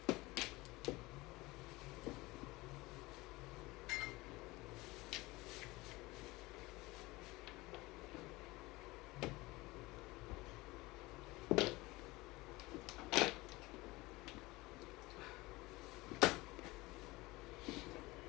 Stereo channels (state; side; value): quieter; right; 21.3 dB